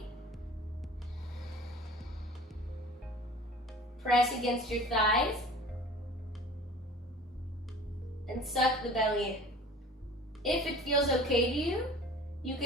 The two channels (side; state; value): both; normal; correlation 0.43